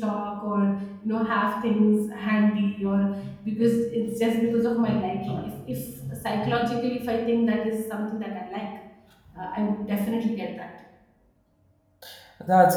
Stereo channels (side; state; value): both; identical; correlation 1.00